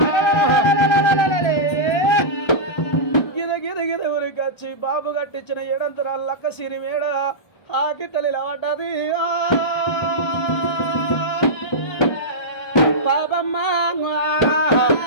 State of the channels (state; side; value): late; right; 1.3 ms